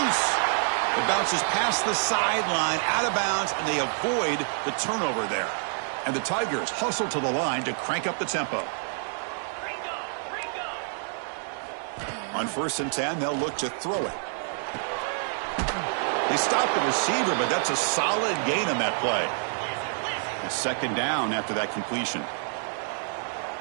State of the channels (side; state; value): left; silent; 60 dB below the other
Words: It bounces past the sideline, out of bounds, and they avoid the turnover there. And the Tigers hustle to the line to crank up the tempo. On 1st and 10, they'll look to throw it. They stop the receiver, but that's a solid gain on that play. And second down after that completion.